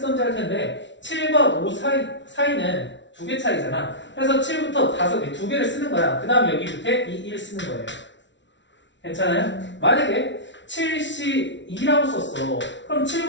할 텐데 7과 5 사이는 2개 차이잖아. 그래서 7부터 5개, 2개를 쓰는 거야. 그 다음 여기 밑에 2, 1 쓰는 거예요. 괜찮아요? 만약에 7시 2라고 썼어. 그럼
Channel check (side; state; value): right; late; 0.53 ms